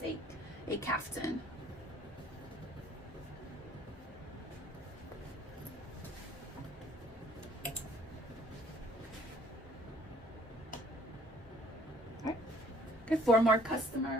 a caftan. 4 more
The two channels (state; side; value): normal; both; correlation 0.58